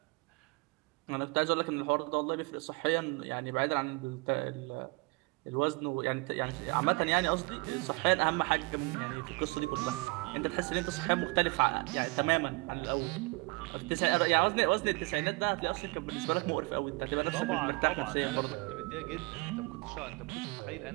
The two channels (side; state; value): left; quieter; 27.4 dB